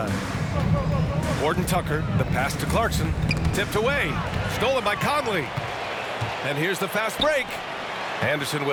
Horton Tucker, the pass to Clarkson. Tipped away. Stolen by Conley. And here's the fast break. Anderson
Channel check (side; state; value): both; identical; correlation 1.00